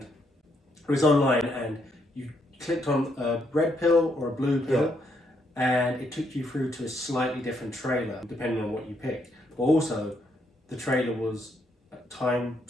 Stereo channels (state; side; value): normal; both; correlation 0.75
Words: was online, and you clicked on a red pill or a blue pill, and it took you through to a slightly different trailer depending on what you picked. But also, the trailer was time